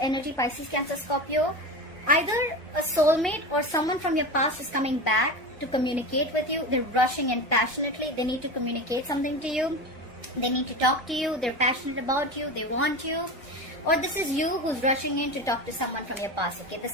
Pisces, Cancer, Scorpio. Either a soulmate or someone from your past is coming back to communicate with you. They're rushing in passionately. They need to communicate something to you. They need to talk to you. They're passionate about you. They want you. Or this is you who's rushing in to talk to someone from your past, okay? The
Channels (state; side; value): normal; both; correlation 0.26